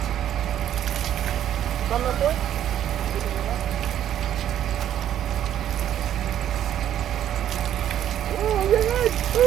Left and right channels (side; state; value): left; quieter; 10.9 dB